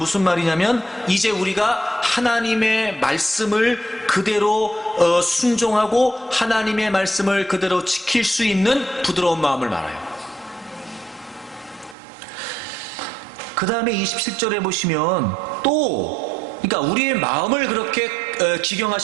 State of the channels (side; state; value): left; drops out; at 12.0 s